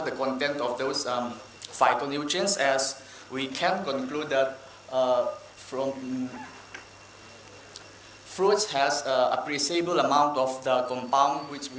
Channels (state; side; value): identical; both; correlation 1.00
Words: the content of those phytonutrients, as we can conclude that from fruits has appreciable amount of the compound which